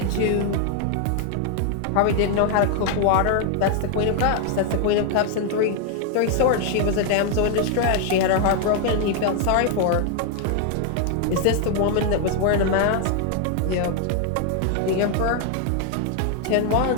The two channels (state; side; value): different; both; correlation 0.00